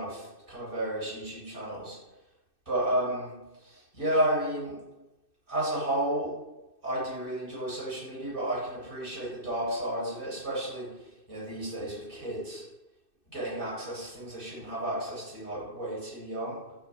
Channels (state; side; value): late; right; 2.6 ms